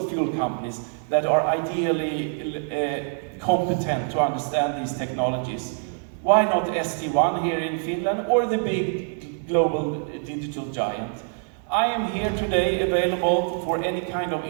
fuel companies that are ideally competent to understand these technologies? Why not ST1 here in Finland, or the big global digital giant? I am here today available for any kind of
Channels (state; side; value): silent; left; digital silence